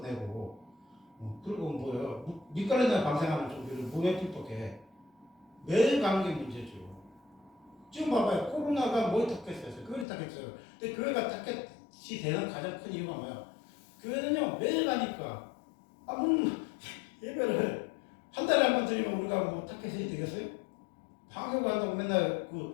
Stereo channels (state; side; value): drops out; right; at 10.1 s